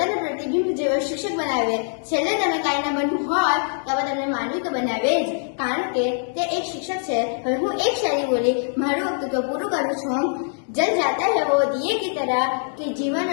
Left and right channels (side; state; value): right; silent; digital silence